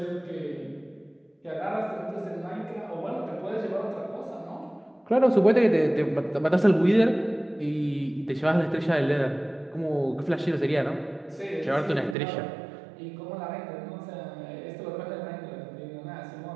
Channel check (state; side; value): drops out; left; at 12.2 s